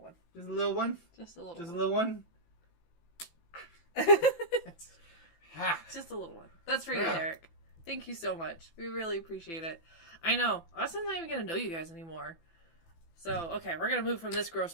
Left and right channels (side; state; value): right; late; 18 ms